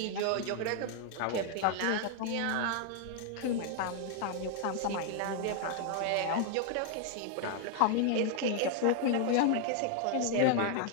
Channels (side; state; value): both; different; correlation 0.00